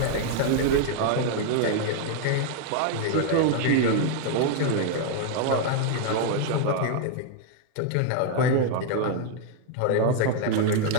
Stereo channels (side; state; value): both; different; correlation 0.00